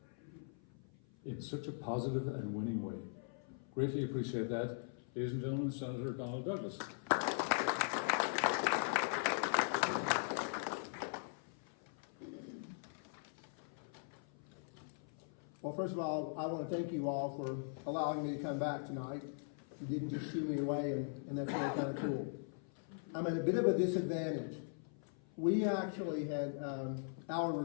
in such a positive and winning way. Greatly appreciate that. Ladies and gentlemen, Senator Donald Douglas. Well, first of all, I want to thank you all for allowing me to come back tonight. You didn't just shoo me away, and that's really kind of cool. I'm at a bit of a disadvantage. We actually had our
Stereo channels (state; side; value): silent; right; 51 dB below the other